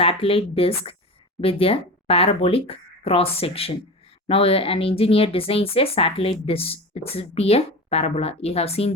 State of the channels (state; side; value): normal; both; correlation 0.28